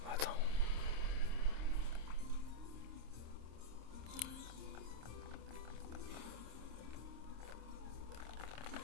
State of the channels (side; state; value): left; late; 26 ms